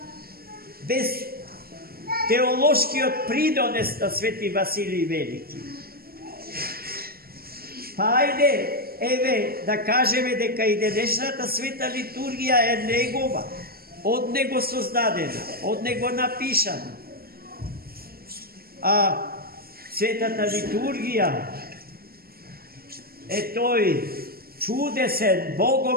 без теолошкиот придонес на Свети Василий Велики. Па ајде, еве, да кажеме дека и денешната света литургија е негова, од него создадена, од него напишана. А светата литургија е тој чудесен,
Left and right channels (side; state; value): left; late; 0.44 ms